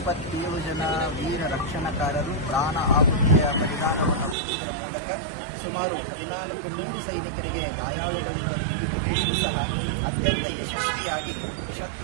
ಜನ ವೀರ ರಕ್ಷಣಕಾರರು ಪ್ರಾಣ ಆಹುತಿಯ ಬಲಿದಾನವನ್ನು ಕೊಡುವುದರ ಮೂಲಕ ಸುಮಾರು 14,000 ಸೈನಿಕರಿಗೆ ಗಾಯಾಳುಗಳನ್ನು ನೀಡಿಕೊಡುವುದು ಸಹ ಅತ್ಯಂತ ಯಶಸ್ವಿಯಾಗಿ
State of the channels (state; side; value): drops out; left; at 4.4 s